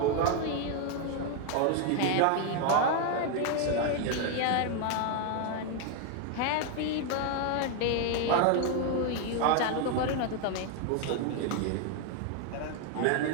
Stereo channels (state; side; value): different; both; correlation 0.01